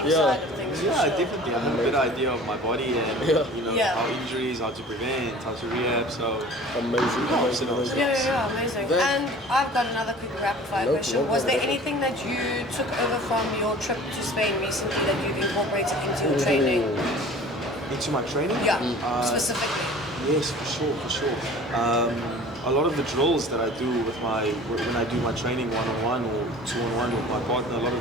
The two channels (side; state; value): both; normal; correlation 0.44